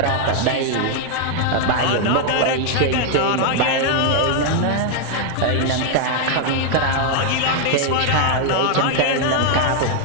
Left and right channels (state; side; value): different; both; correlation 0.00